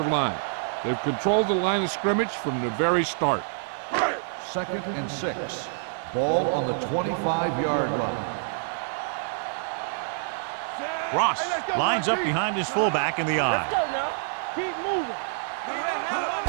line. They've controlled the line of scrimmage from the very start. 2nd and 6. Ball on the 25-yard line. Ross lines up behind his fullback in the eye. Let's go now. Keep moving.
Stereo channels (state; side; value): silent; left; 60 dB below the other